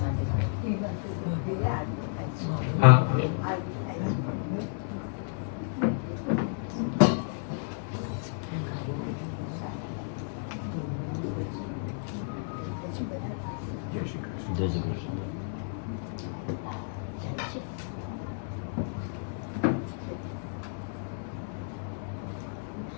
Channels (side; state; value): right; silent; 57 dB below the other